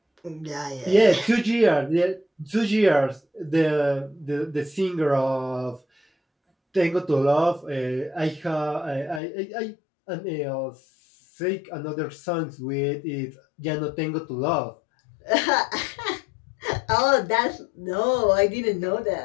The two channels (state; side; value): drops out; right; at 9.2 s